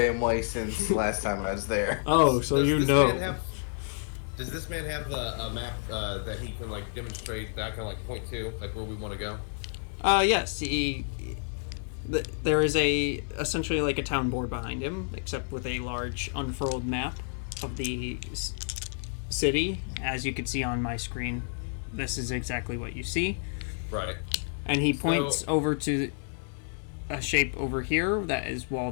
way since last time I was there. oh, so you know. Does this man have a map that he can like demonstrate that I can like point to, like where we want to go? Yes, there is essentially like a town board behind him, except with a large unfurled map of the city. As you can see on my screen, this is exactly what you see. Right. And he points over to a shape over here that is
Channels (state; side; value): silent; right; digital silence